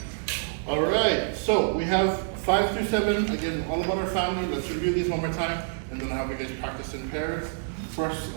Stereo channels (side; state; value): left; silent; digital silence